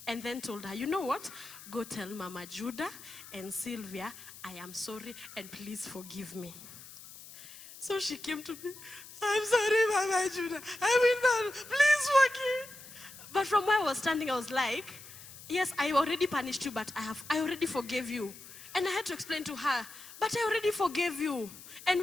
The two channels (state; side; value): noise; left; hiss, 16 dB below the sound